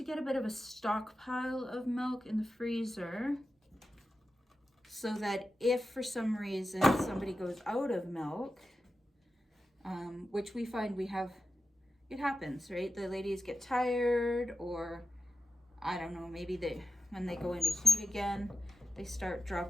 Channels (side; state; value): both; normal; correlation 0.92